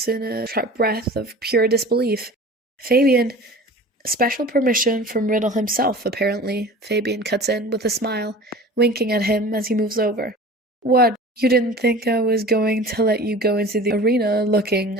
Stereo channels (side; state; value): both; normal; correlation 0.39